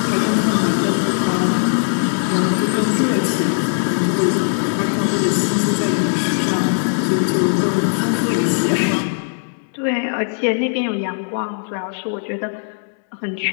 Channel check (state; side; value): silent; right; digital silence